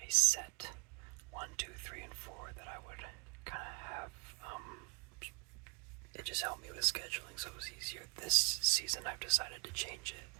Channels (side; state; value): left; quieter; 32.2 dB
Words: set 1, 2, 3, and 4 that I would kind of have. It just helped me with scheduling, so it was easier. This season, I've decided to change it